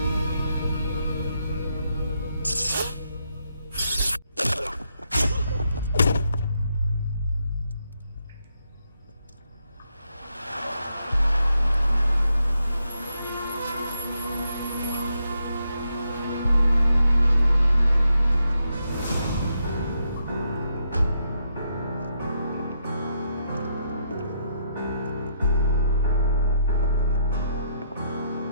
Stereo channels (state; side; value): inverted; both; correlation -0.79